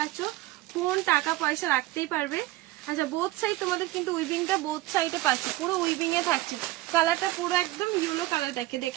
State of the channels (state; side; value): quieter; left; 17.7 dB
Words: ফোন টাকা পয়সা রাখতেই পারবে। আচ্ছা বোথ সাইড তোমাদের কিন্তু উইভিংটা বোথ সাইডে পাচ্ছে, পুরো উইভিং এ থাকছে। কালারটা পুরো একদম ইয়েলো কালার,